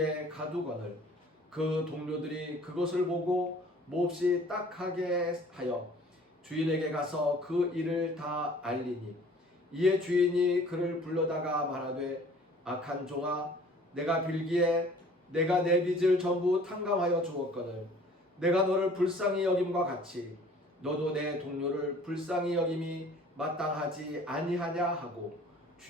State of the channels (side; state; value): both; normal; correlation 0.51